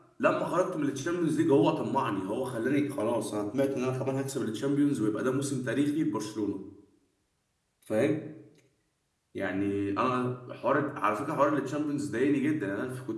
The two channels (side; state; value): both; identical; correlation 1.00